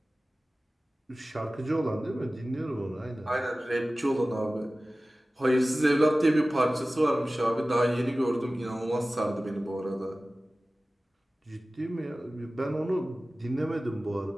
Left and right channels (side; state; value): both; normal; correlation 0.97